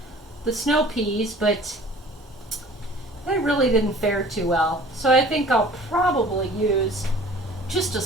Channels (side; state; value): both; normal; correlation 0.47